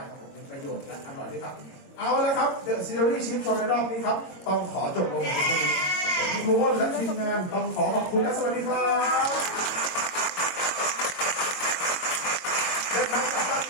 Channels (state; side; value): late; right; 22 ms